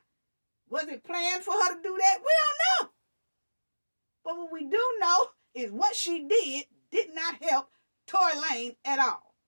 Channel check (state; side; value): inverted; both; correlation -1.00